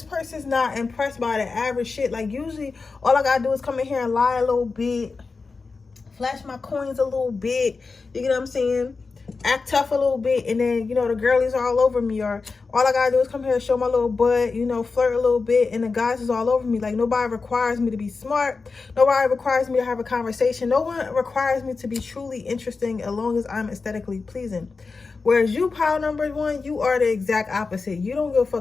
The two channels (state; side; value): quieter; right; 4.3 dB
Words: person's not impressed by the average shit. Like usually all I gotta do is come in here and lie a little bit, flash my coins a little bit, you get what I'm saying? Act tough a little bit, and then, you know, the girlies are all over me, or all I gotta do is come here and show my little butt, you know, flirt a little bit, and the guys is all over me. Like nobody requires me to be smart, nobody requires me to have a conversation, no one requires me to be truly interesting as long as I'm aesthetically pleasing. Whereas you, pile number one, you are the exact opposite. You don't give a